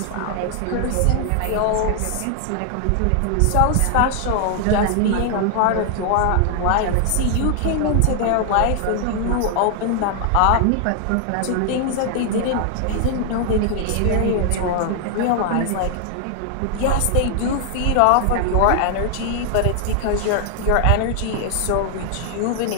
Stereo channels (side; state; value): both; different; correlation 0.00